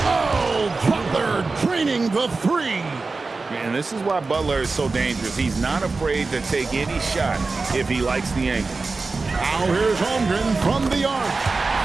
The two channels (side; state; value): left; quieter; 3.9 dB